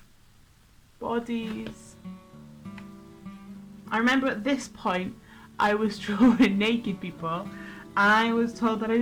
bodies. I remember at this point I was drawing naked people, and I was told that I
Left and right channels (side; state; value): both; identical; correlation 1.00